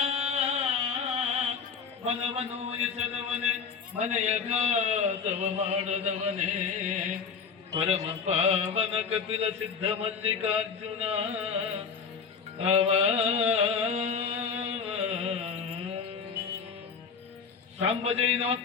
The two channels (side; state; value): right; quieter; 6.0 dB